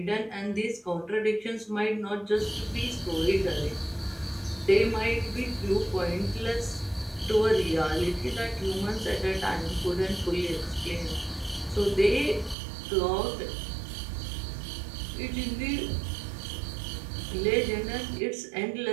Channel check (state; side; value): drops out; left; at 12.6 s